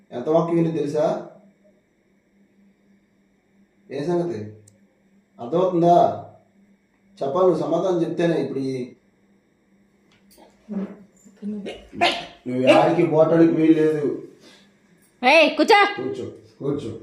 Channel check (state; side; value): identical; both; correlation 1.00